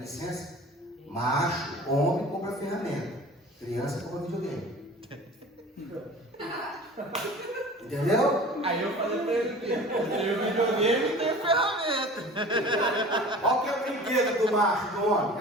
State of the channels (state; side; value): normal; both; correlation 0.41